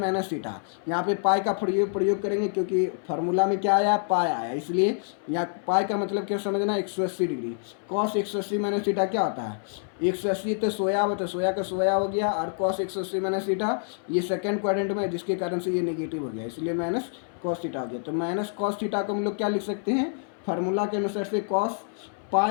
थीटा। यहाँ पे पाई का प्रयोग करेंगे क्योंकि फार्मूला में क्या आया पाई आया, इसलिए यहाँ पाई का मतलब क्या समझना 180 डिग्री। कॉस 180 माइनस थीटा क्या होता है 180 तो सोया हो, तो सोया का सोया हो गया, और कॉस 180 माइनस थीटा ये सेकंड क्वाड्रेंट में है जिसके कारण से ये नेगेटिव हो गया, इसलिए माइनस कॉस थीटा हो गया। तो माइनस कॉस थीटा को हम लोग क्या लिख सकते हैं फार्मूला के अनुसार से cos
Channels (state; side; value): silent; right; 59 dB below the other